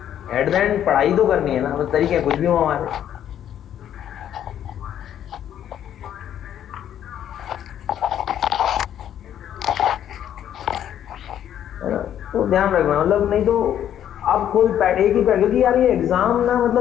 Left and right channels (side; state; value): right; quieter; 10.4 dB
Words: एट द एंड पढ़ाई तो करनी है ना, तो तरीके कुछ भी हो हमारे। तो ध्यान रखना, मतलब नहीं तो आप खुद एक ही क्योंकि यार ये एग्जाम ना